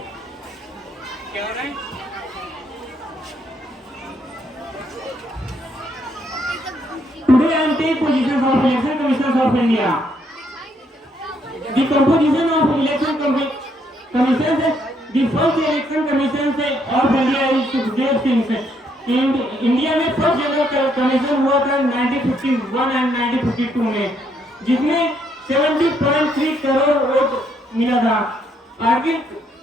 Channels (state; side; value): normal; both; correlation 0.72